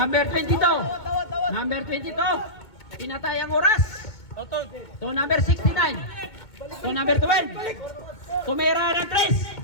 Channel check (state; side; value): late; right; 2.2 ms